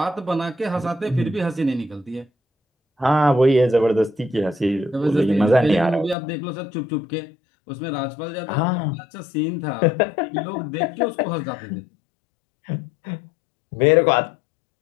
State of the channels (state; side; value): drops out; right; at 6.2 s